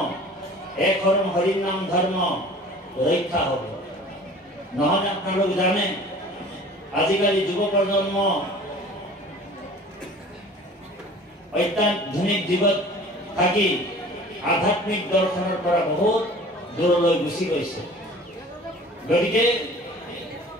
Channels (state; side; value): normal; both; correlation 0.45